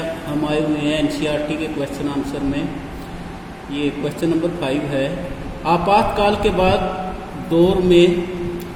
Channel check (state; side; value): identical; both; correlation 1.00